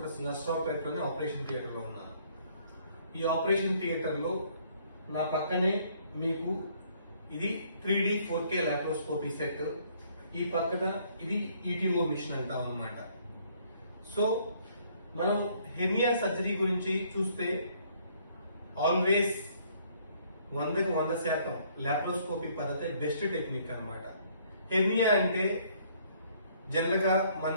నర్సరావుపేటలోనే ఆపరేషన్ థియేటర్లో ఉన్నాను. ఈ ఆపరేషన్ థియేటర్లో నా పక్కనే మీకు ఇది 3D 4K లాప్రోస్కోపీ సెట్, ఈ పక్కన ఇది ఈటీఓ మిషన్ అంటాం అన్నమాట. సో మనం హెర్నియా సర్జరీ గురించి చూస్తే ఆల్వేస్ 100% లాప్రోస్కోపీ పద్ధతి బెస్ట్ టెక్నిక్ అన్నమాట. హెర్నియా అంటే జనరల్ గా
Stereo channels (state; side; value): inverted; both; correlation -0.64